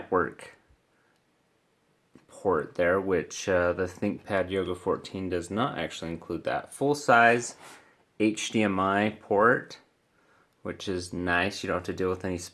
port there, which the Thinkpad Yoga 14 does not actually include that. Full-size HDMI port, which is nice. You don't have to deal with any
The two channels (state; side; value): identical; both; correlation 1.00